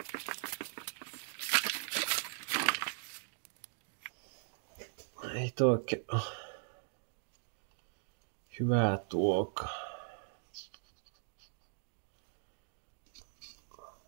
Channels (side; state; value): left; silent; digital silence